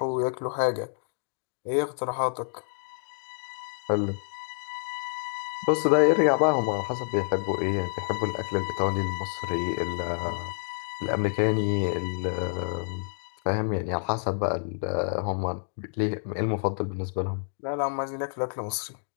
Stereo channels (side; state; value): right; silent; digital silence